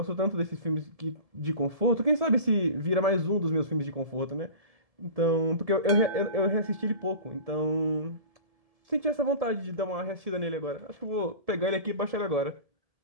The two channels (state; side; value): late; left; 1.7 ms